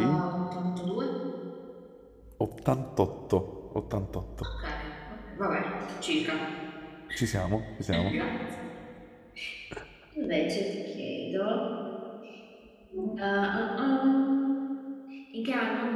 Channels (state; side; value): identical; both; correlation 1.00